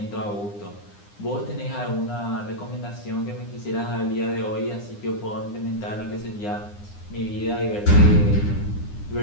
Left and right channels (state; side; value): late; right; 9.8 ms